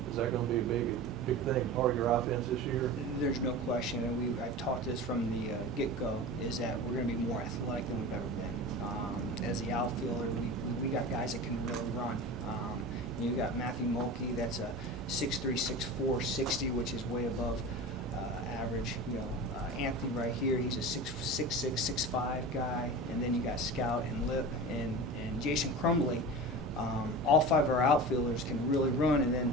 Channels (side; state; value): both; normal; correlation 0.31